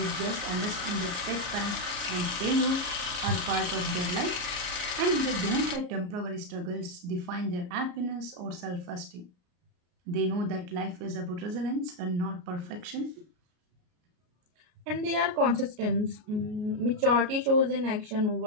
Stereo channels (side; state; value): left; late; 33 ms